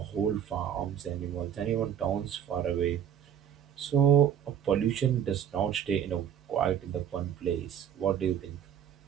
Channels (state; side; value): quieter; left; 9.3 dB